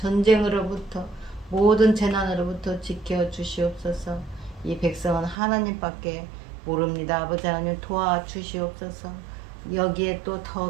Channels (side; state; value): left; drops out; at 5.4 s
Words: 모든 재난으로부터 지켜주시옵소서. 이 백성은 하나님밖에 모릅니다. 아버지 하나님 도와주시옵소서. 여기에 또